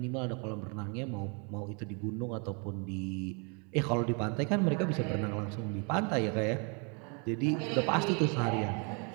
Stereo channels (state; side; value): quieter; left; 34.9 dB